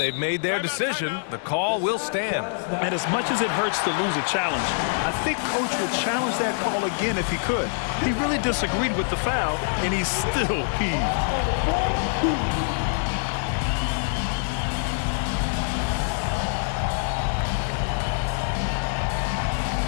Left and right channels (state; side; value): silent; right; digital silence